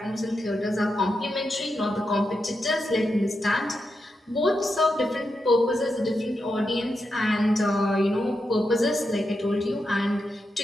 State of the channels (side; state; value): both; normal; correlation 0.86